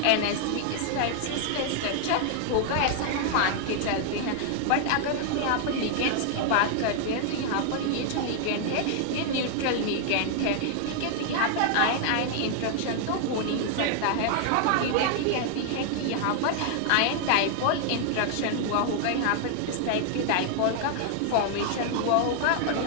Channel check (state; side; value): different; both; correlation 0.00